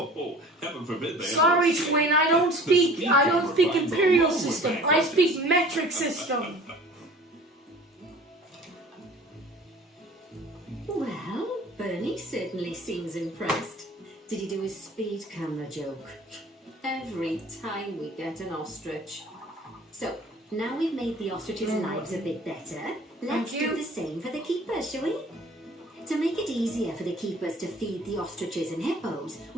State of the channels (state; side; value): normal; both; correlation 0.47